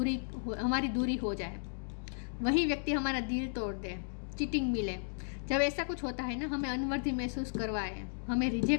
दूरी हो जाए, वही व्यक्ति हमारा दिल तोड़ दे, चीटिंग मिले, जब ऐसा कुछ होता है ना, हमें अनवर्दी महसूस करवाए, हमें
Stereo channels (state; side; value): silent; right; digital silence